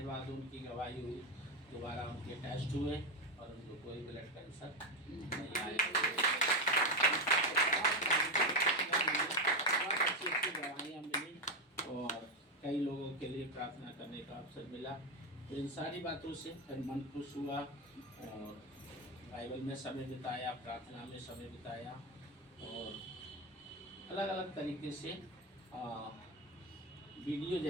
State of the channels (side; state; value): both; normal; correlation 0.12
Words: उनकी गवाही हुई, दोबारा उनके टेस्ट हुए और उनको कोई ब्लड कैंसर नहीं आया। अच्छी गवाहियाँ मिली और कई लोगों के लिए प्रार्थना करने का अवसर मिला। तो इन सारी बातों से फिर मन खुश हुआ, और बाइबल में समय बिताया, प्रार्थना में समय बिताया, और अलग अलग तरीके से वीडियो